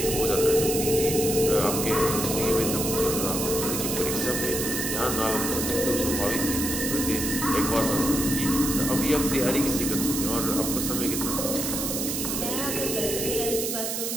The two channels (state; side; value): noise; right; hiss, 2 dB below the sound